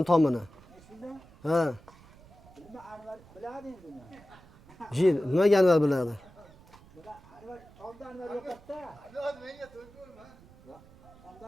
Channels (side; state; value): right; noise; rumble, 23 dB below the sound